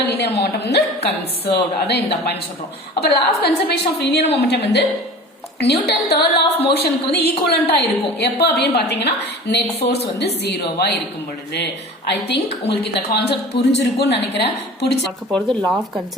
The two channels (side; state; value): both; normal; correlation 0.39